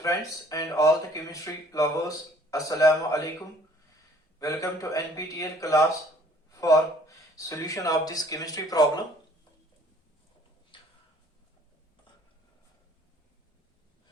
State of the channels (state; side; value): normal; both; correlation 0.57